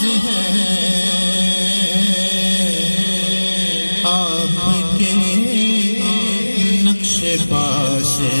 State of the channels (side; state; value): both; inverted; correlation -1.00